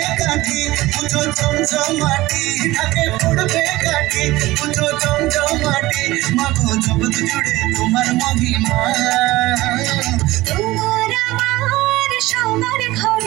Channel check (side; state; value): left; quieter; 18.5 dB